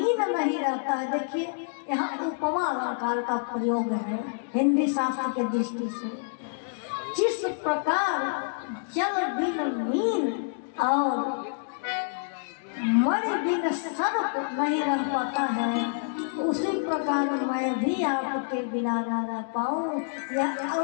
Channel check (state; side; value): silent; right; digital silence